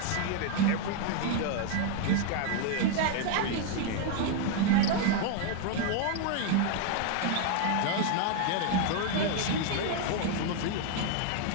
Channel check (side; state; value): both; different; correlation 0.01